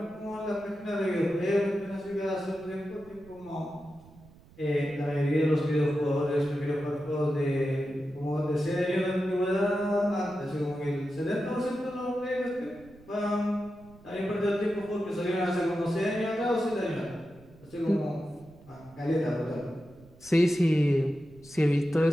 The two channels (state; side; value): noise; right; rumble, 24 dB below the sound